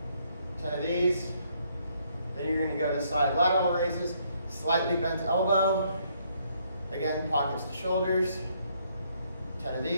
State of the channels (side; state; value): both; inverted; correlation -0.70